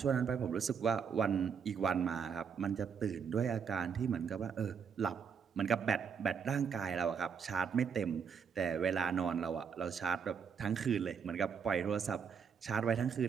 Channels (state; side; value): quieter; left; 6.6 dB